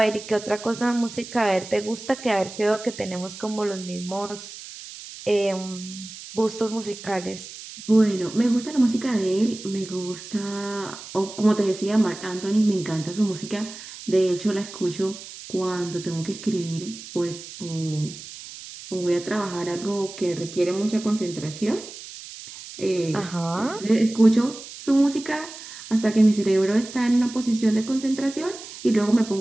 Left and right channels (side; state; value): right; noise; hiss, 14 dB below the sound